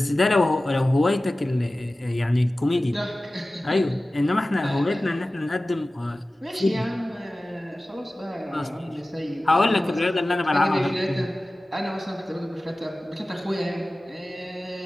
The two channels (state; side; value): normal; both; correlation 0.97